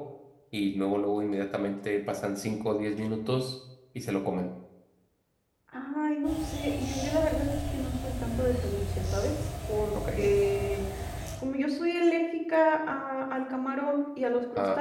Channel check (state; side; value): identical; both; correlation 1.00